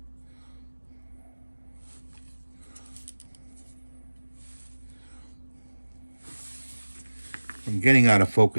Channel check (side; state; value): both; inverted; correlation -1.00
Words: I'm getting out of